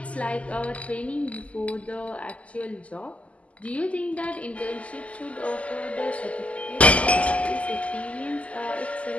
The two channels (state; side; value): late; right; 0.065 ms